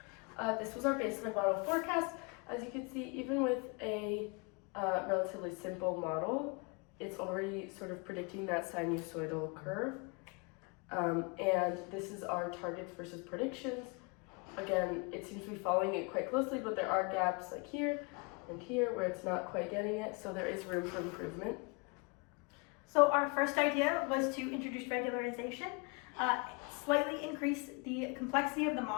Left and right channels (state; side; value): quieter; right; 30.9 dB